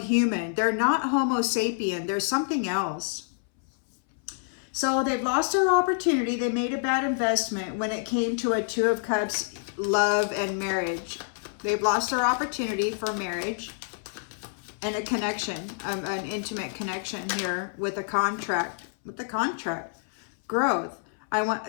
human. They're not Homo sapien. They're something else. So they've lost their opportunity. They made a bad investment when it came to a Two of Cups, love and marriage. They've lost their opportunity for marriage and a connection, an intimate connection here with a contract. With the contract, growth.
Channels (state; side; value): silent; right; 60 dB below the other